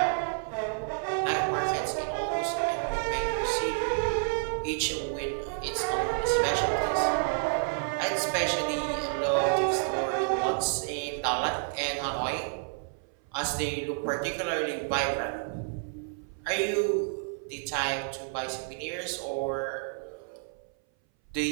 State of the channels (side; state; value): left; silent; 58 dB below the other